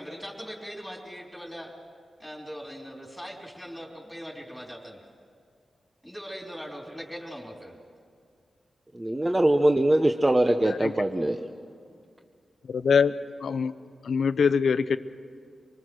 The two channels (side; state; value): both; normal; correlation 0.92